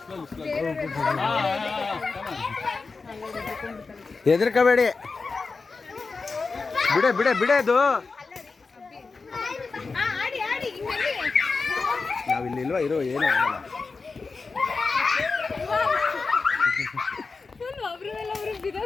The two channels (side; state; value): right; quieter; 4.3 dB